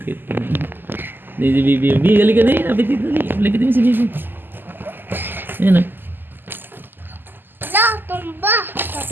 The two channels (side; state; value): left; late; 0.093 ms